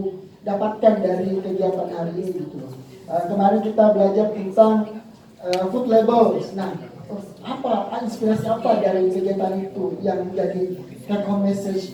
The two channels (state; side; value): identical; both; correlation 1.00